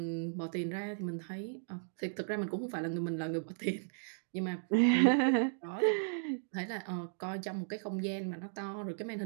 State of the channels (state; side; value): silent; left; digital silence